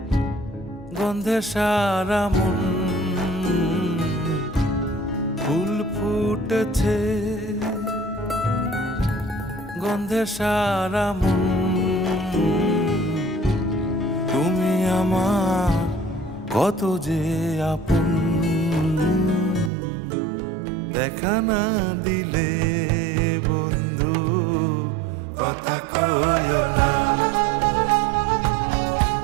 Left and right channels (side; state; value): left; drops out; at 19.7 s